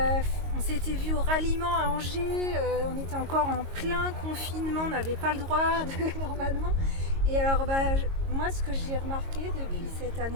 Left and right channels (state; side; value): late; left; 22 ms